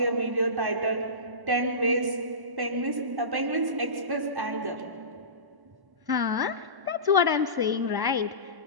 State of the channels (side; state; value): left; late; 1.1 ms